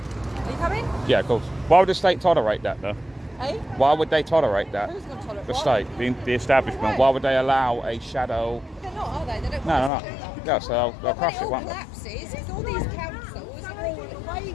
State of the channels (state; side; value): drops out; right; at 9.9 s